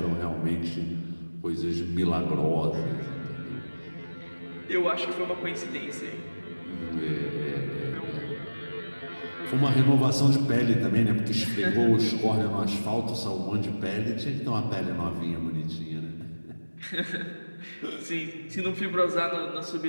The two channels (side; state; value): both; inverted; correlation -1.00